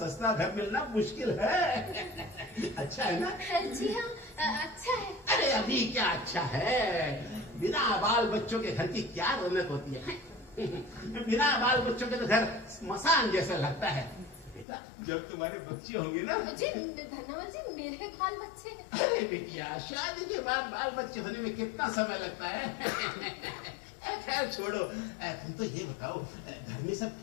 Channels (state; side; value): drops out; right; at 14.7 s